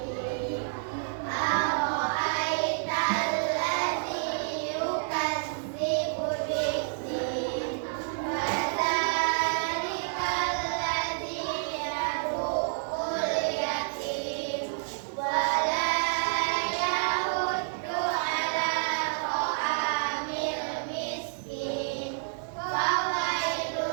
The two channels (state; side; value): silent; left; 58 dB below the other